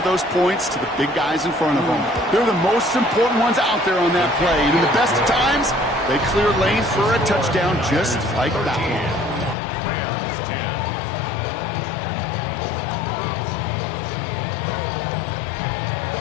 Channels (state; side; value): drops out; right; at 9.6 s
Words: those points to the big guys in front of them. They're the most important ones out there on that play, and in the best of times, they clear lanes for a touchdown just like that one. Rams 10.